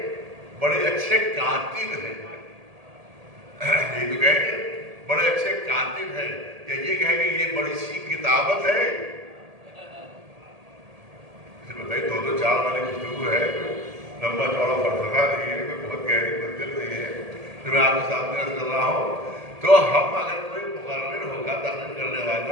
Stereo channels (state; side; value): late; left; 1.8 ms